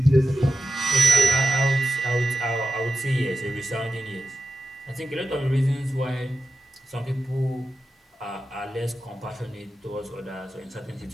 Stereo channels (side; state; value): both; normal; correlation 0.91